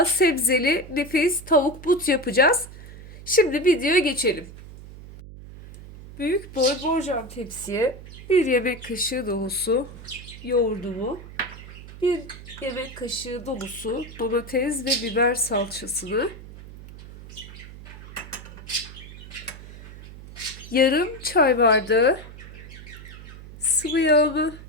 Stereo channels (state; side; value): noise; right; hum, 15 dB below the sound